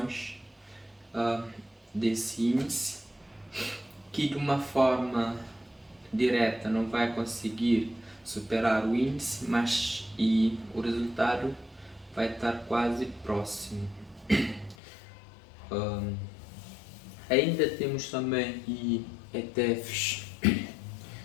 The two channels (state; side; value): drops out; right; at 14.8 s